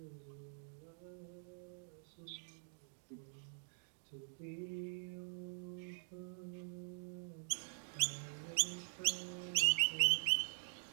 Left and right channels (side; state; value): left; silent; digital silence